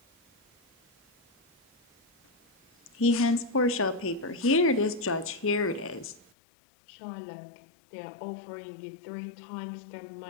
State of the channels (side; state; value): right; drops out; at 6.3 s